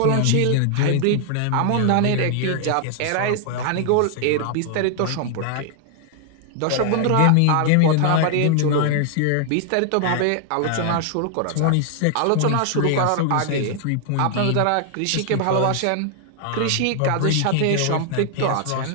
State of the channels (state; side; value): different; both; correlation 0.00